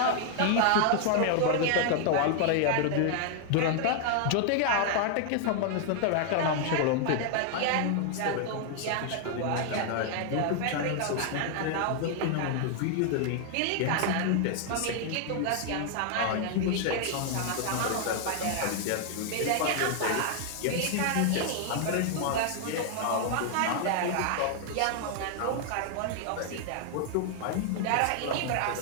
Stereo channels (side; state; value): both; different; correlation 0.00